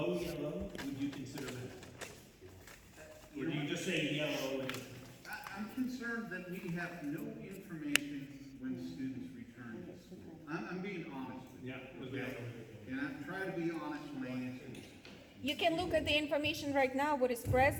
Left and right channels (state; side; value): identical; both; correlation 1.00